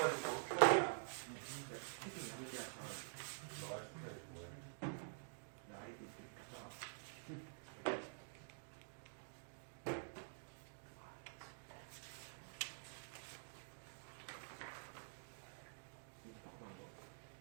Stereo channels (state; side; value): silent; left; digital silence